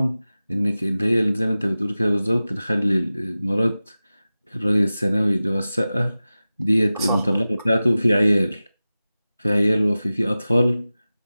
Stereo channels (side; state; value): both; inverted; correlation -0.96